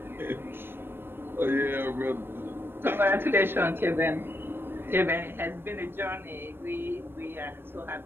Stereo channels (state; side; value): late; left; 0.10 ms